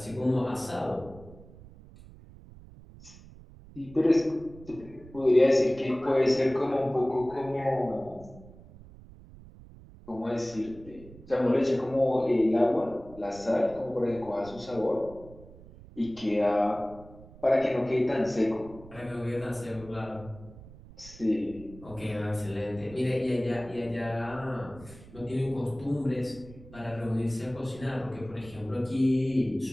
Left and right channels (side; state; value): right; noise; rumble, 19 dB below the sound